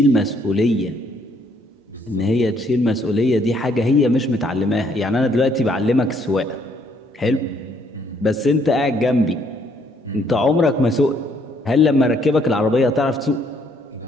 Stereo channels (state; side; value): normal; both; correlation 0.68